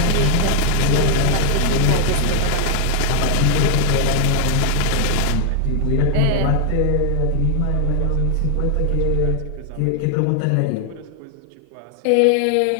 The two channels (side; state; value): both; different; correlation 0.00